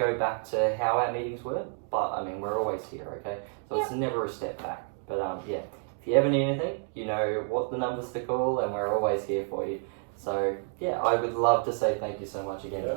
back to how our meetings were, but I mean, we're always here, okay? So it's never a step back. But if you ever need anything, you know what the numbers to call, and we're always here for you. So I would love to say thank you so much again,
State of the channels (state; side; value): silent; left; 58 dB below the other